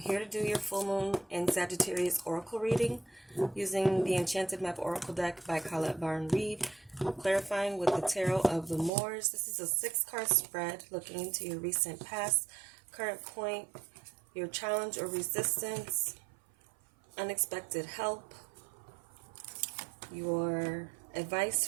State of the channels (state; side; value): drops out; left; at 8.9 s